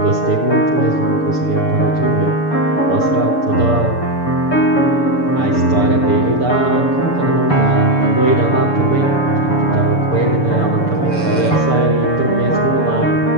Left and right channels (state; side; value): late; right; 6.9 ms